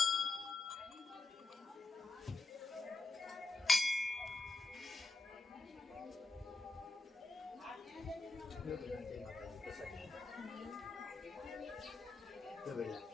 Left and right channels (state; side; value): quieter; right; 3.5 dB